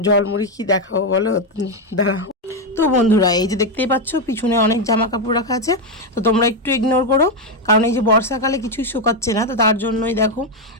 জলমুড়ি কি দেখাবো বলো, দাঁড়াও। তো বন্ধুরা, এই যে দেখতেই পাচ্ছ পিছনে অনেক জামা কাপড় রাখা আছে, তো তোমরা একটু ইগনোর করো, কারণ এই যে বর্ষাকালে কিছুই শুকাচ্ছে না, তো তার জন্যই দেখো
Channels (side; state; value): both; normal; correlation 0.06